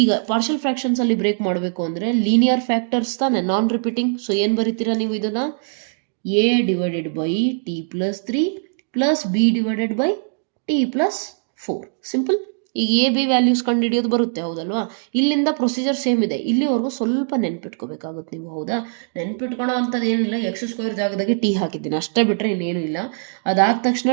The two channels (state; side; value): silent; left; digital silence